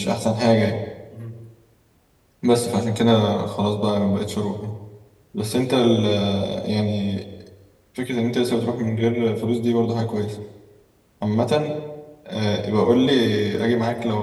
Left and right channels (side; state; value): both; identical; correlation 1.00